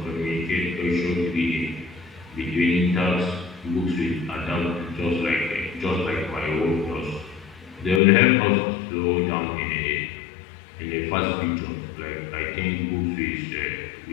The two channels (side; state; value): right; drops out; at 8.0 s